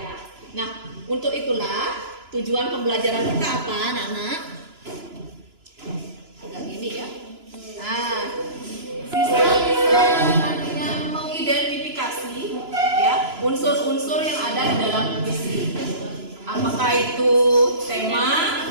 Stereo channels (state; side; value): late; left; 2.9 ms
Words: Nah, untuk itulah tujuan pembelajaran kita apa, anak-anak? Agak gini ya. Nah, siswa bisa nantinya mengidentifikasi ya unsur-unsur yang ada di dalam puisi. Apakah itu tema,